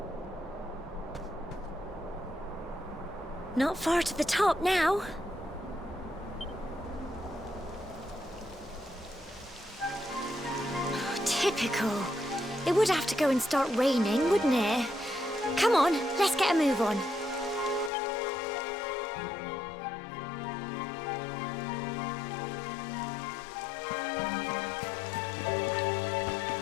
Not far to the top now. Typical. It would have to go and start raining, wouldn't it? Come on, let's get a move on.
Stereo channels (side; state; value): right; drops out; at 17.9 s